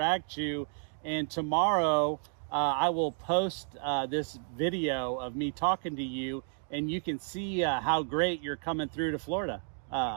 and tomorrow I will post this video of me talking to you, and you can see how great you're coming through to Florida.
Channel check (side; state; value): left; silent; 57 dB below the other